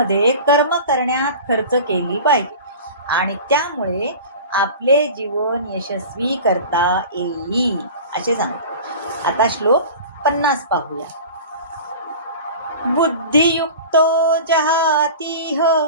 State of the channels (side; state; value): both; inverted; correlation -0.37